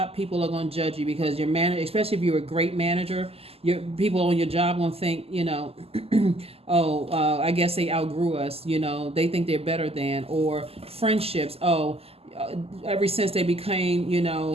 people are going to judge you because your manager, especially if you're a great manager, your people on your job going to think, I guess they outgrew us, they think they're better than. Or friendships, ever since they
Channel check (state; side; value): late; left; 0.29 ms